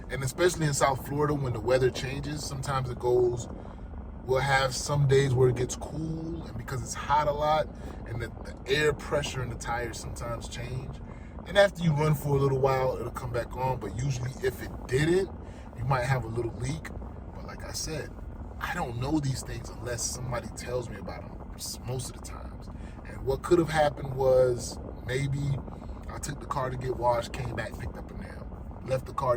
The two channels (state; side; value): identical; both; correlation 1.00